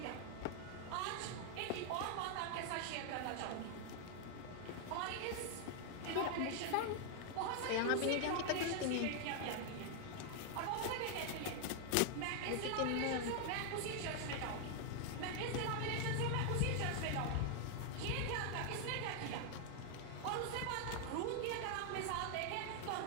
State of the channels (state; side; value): different; both; correlation 0.00